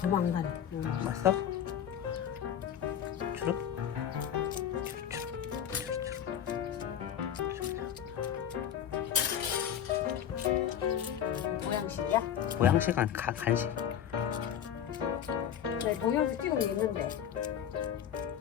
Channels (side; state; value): right; quieter; 9.4 dB